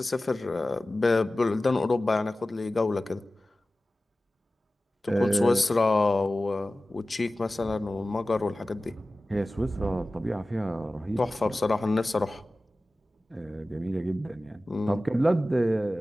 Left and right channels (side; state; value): both; normal; correlation 0.96